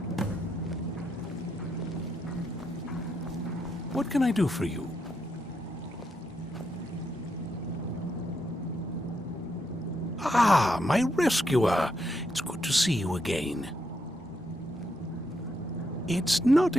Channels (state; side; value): normal; both; correlation 0.80